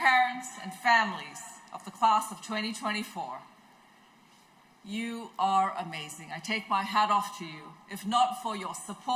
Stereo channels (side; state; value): both; identical; correlation 1.00